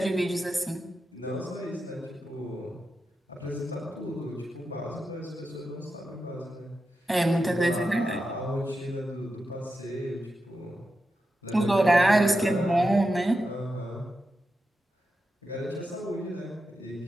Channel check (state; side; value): normal; both; correlation 0.89